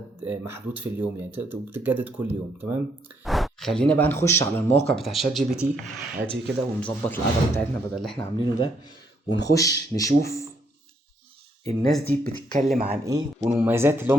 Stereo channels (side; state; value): both; normal; correlation 0.72